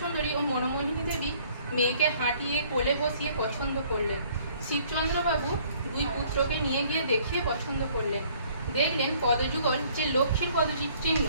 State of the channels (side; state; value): both; inverted; correlation -0.59